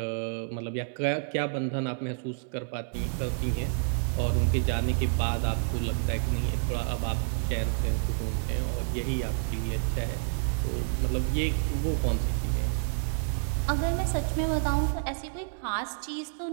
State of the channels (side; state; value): left; silent; 59 dB below the other